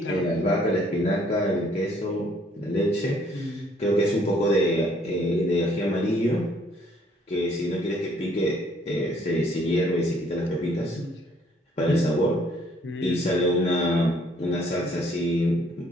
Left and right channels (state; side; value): normal; both; correlation 0.63